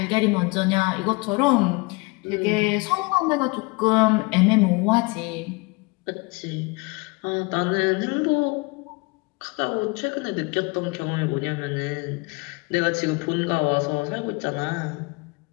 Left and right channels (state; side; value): quieter; right; 26.5 dB